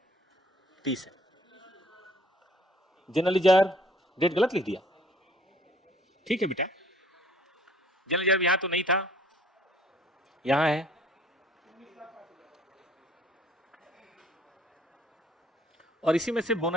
30 है। जनरल रिजर्व डेट गलत लिख दिया, ठीक है बेटा, जनरल रिजर्व यहां तो नहीं था, यहां है, और इसी में से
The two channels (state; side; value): normal; both; correlation 0.57